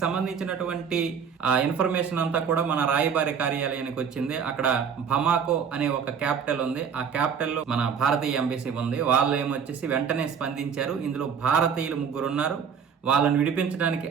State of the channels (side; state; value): left; quieter; 7.0 dB